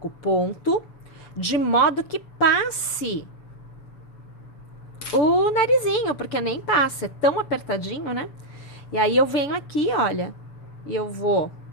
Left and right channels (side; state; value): right; late; 7.0 ms